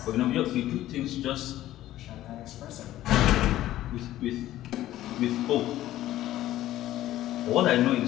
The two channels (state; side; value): quieter; right; 14.2 dB